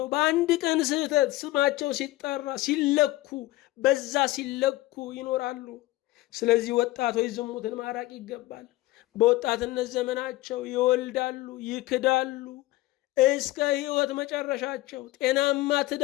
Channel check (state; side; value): quieter; right; 17.8 dB